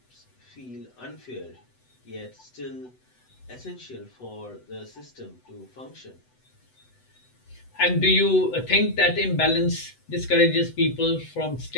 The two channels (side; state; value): right; late; 8.0 ms